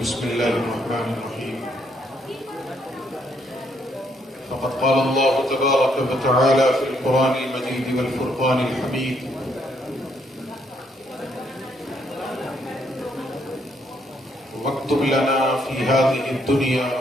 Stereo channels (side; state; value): both; normal; correlation 0.72